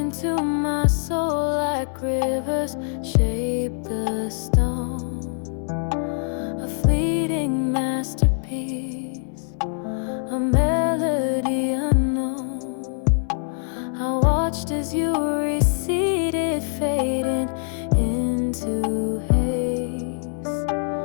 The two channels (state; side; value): silent; right; 58 dB below the other